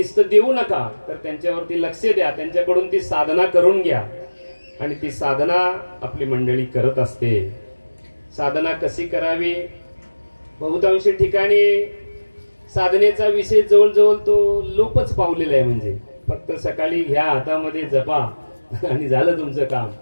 देऊ नका, तर त्यांच्यावरती लक्ष द्या, त्यांच्याकडून ती साधना करून घ्या. आणि ती साधना आपली मंडळी करत असते. साधना कशी करावी? बहुतांश ठिकाणी साधनेचा विषय जवळजवळ तो लोपच पावलेला आहे. म्हणजे फक्त सकाळी घ्या हातामध्ये जपा आणि झालं तुमचं काम.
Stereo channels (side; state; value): both; inverted; correlation -1.00